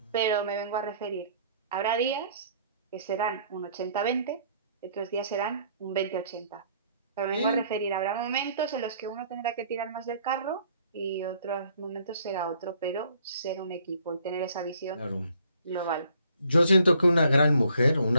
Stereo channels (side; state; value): both; inverted; correlation -0.62